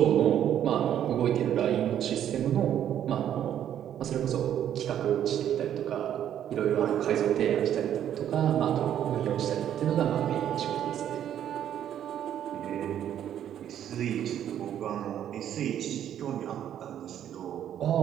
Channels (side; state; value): left; quieter; 10.4 dB